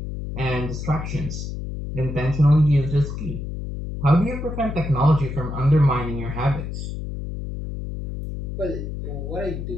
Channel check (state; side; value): noise; left; hum, 6 dB below the sound